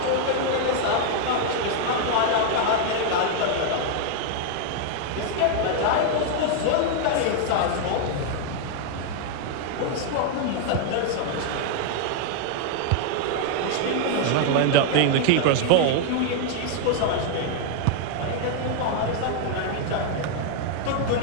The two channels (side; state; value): both; different; correlation 0.00